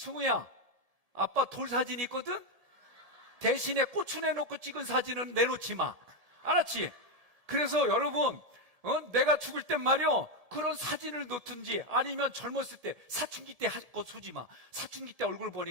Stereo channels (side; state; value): left; late; 1.7 ms